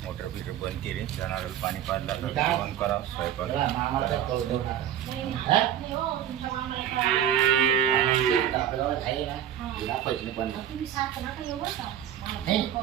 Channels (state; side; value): quieter; left; 10.5 dB